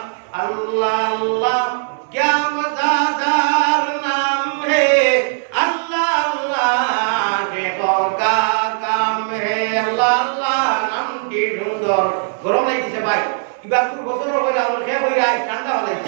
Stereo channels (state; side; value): silent; left; digital silence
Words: আল্লাহ আল্লাহ क्या मज़ेदार नाम है अल्लाह अल्लाह के का काम है अल्लाह अल्लाह नाम की सुंदर गरम লাগিছে ভাই এবার পুরো বছর হয়ে গেল সে হই আই ঠান্ডা